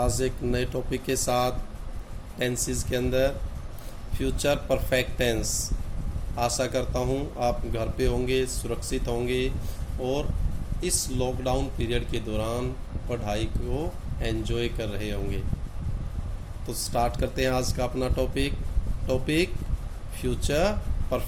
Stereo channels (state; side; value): identical; both; correlation 1.00